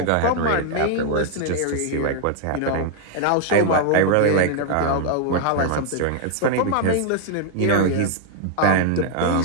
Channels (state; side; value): different; both; correlation 0.00